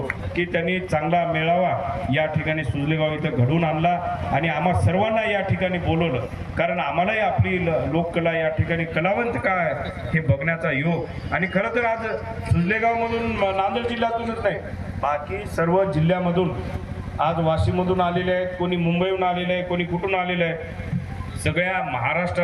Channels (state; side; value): identical; both; correlation 1.00